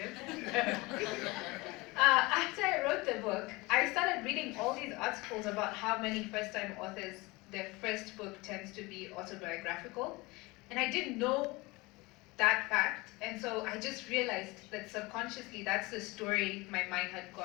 After I wrote the book, I started reading all these articles about how many first-time authors, their first book tends to be autobiographical. And I didn't know that fact, and so I just realized that subconsciously that's the story my mind had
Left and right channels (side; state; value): right; quieter; 23.3 dB